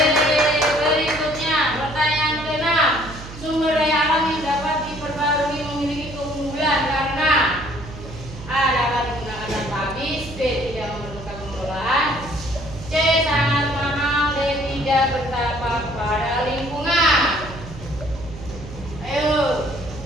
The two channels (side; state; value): right; noise; hum, 13 dB below the sound